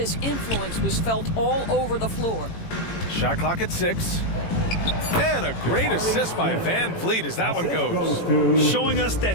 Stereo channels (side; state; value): right; late; 18 ms